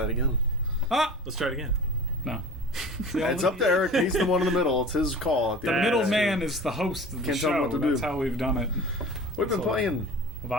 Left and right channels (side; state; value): both; normal; correlation 0.38